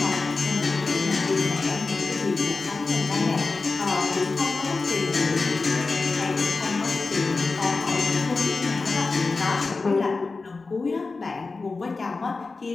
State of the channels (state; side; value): quieter; right; 3.9 dB